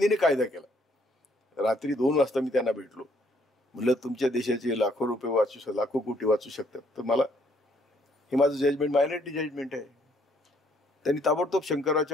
कायदा केला. रात्री 2 वाजता मी त्यांना भेटलो. म्हणलं तुमच्या देशाचे लाखो रुपये लाखो कोटी वाचू शकतात. तर मला हे माझं जजमेंट मायनॉरिटी जजमेंट आहे. त्यांनी ताबडतोब शंकरराव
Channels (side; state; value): both; normal; correlation 0.67